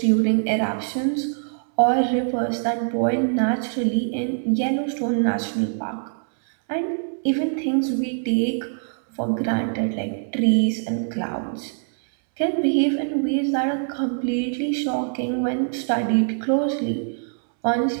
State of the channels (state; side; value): silent; left; 63 dB below the other